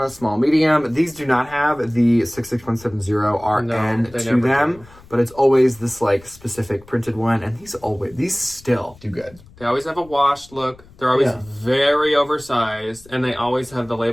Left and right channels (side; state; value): left; noise; rumble, 24 dB below the sound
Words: small, medium. These do not have the 66170 RN they to never them, do. but it's always this like specific printed one, and these still do good. They always have a washed look. They're always Yeah. very oversized, and they always have the